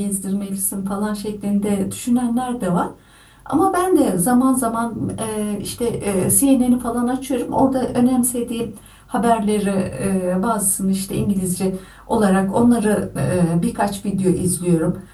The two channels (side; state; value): both; identical; correlation 1.00